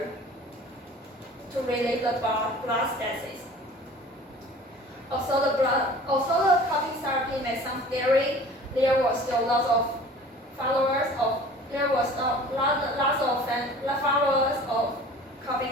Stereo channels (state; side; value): normal; both; correlation 0.45